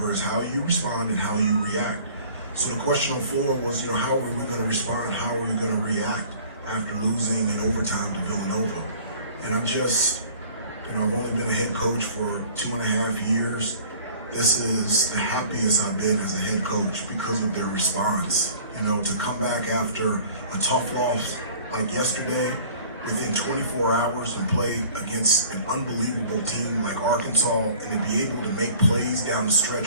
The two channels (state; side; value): inverted; both; correlation -0.49